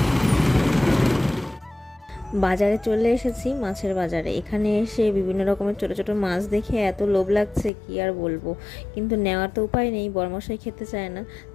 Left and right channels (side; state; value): right; drops out; at 7.7 s